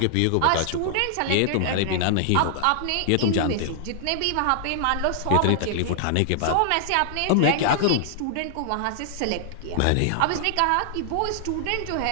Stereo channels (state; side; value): different; both; correlation -0.01